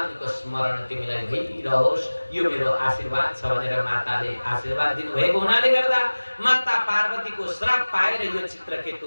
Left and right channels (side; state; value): both; inverted; correlation -1.00